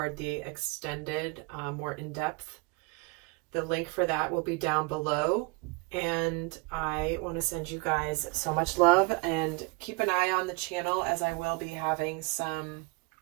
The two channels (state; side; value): quieter; left; 28.0 dB